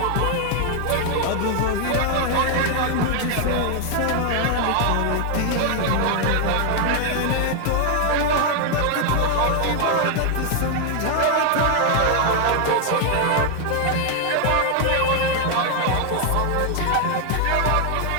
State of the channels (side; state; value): both; different; correlation 0.00